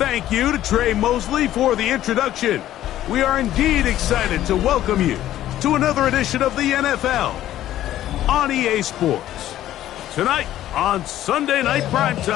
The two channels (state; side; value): quieter; right; 13.0 dB